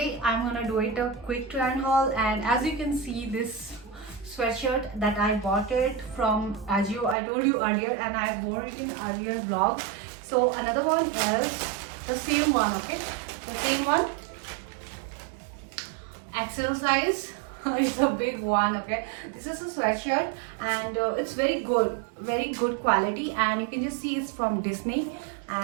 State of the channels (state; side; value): drops out; left; at 7.2 s